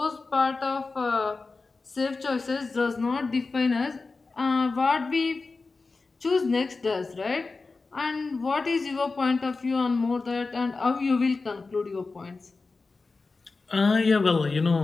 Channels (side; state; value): right; quieter; 3.9 dB